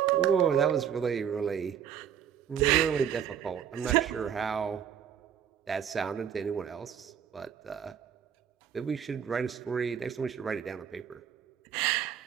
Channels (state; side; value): quieter; left; 8.7 dB